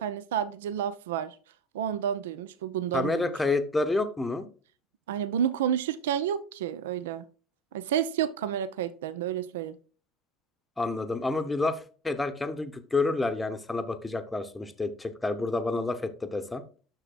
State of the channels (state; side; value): normal; both; correlation 0.34